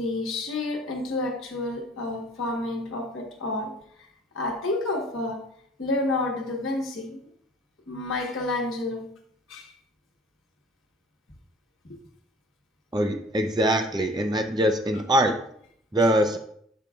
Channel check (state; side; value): normal; both; correlation 0.50